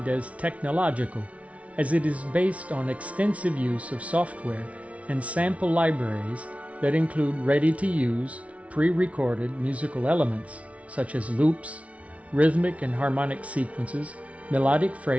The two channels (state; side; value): late; left; 0.065 ms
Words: as technological, as it is based on extensive use of software and sample libraries that include ready-to-use, pre-recorded musical elements such as loops, rhythmic and harmonic sequences, melodic